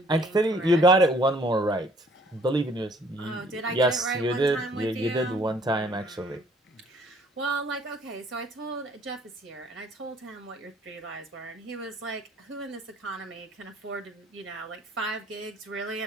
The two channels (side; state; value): both; normal; correlation 0.59